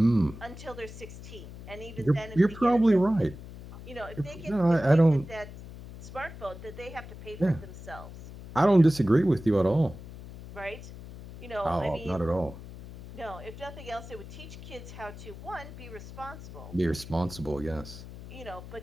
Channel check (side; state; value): left; noise; hum, 14 dB below the sound